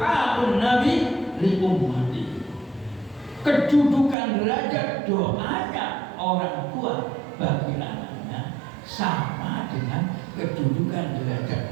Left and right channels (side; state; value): left; drops out; at 4.2 s